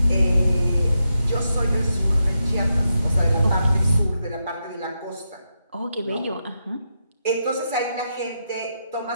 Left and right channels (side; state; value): both; inverted; correlation -0.85